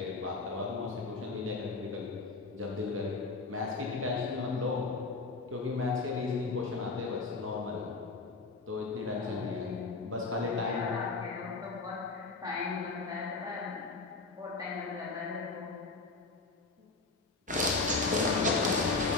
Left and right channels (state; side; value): quieter; right; 3.8 dB